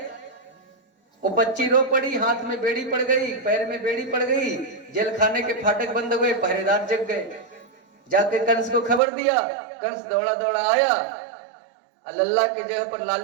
वो बच्ची रो पड़ी, हाथ में बेड़ी पड़ गई, पैर में बेड़ी पड़ गई। जेल खाने के फाटक बंद हो गए, पहरेदार जग गए। जाके कंस को खबर दिया। कंस दौड़ा दौड़ा आया, लल्ला के जगह पर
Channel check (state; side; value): drops out; left; at 9.0 s